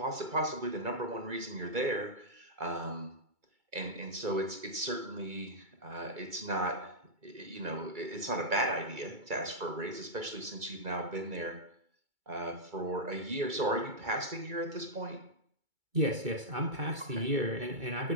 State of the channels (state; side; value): late; left; 2.3 ms